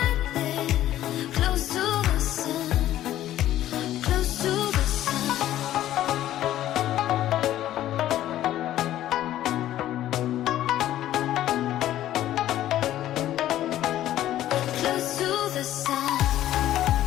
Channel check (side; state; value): right; quieter; 13.1 dB